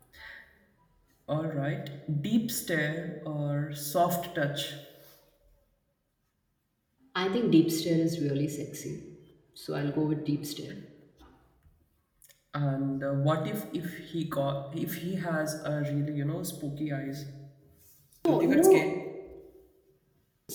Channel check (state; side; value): identical; both; correlation 1.00